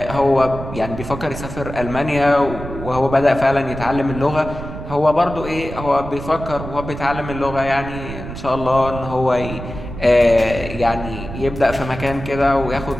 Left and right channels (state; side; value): noise; right; rumble, 10 dB below the sound